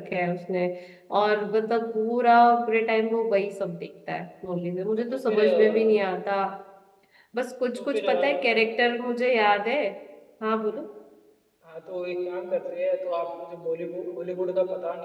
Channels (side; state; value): both; identical; correlation 1.00